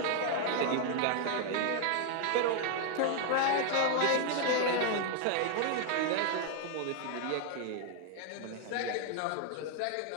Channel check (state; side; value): different; both; correlation 0.00